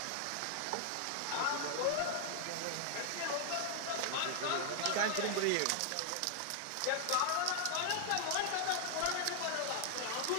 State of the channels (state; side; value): different; both; correlation 0.00